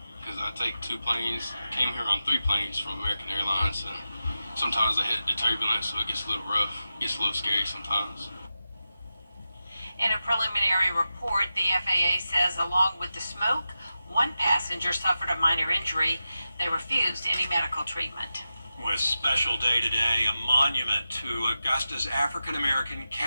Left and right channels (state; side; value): inverted; both; correlation -0.91